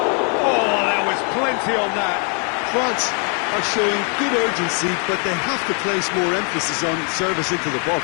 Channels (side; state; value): right; quieter; 39.6 dB